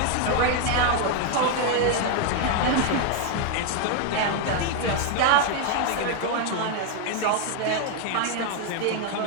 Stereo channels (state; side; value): different; both; correlation 0.01